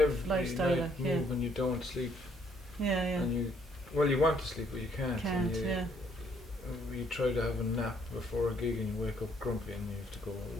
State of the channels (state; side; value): normal; both; correlation 0.67